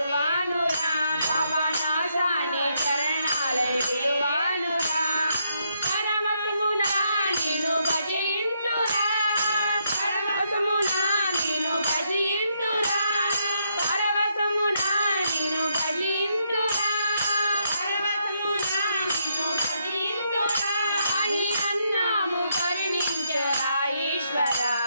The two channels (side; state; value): both; inverted; correlation -0.76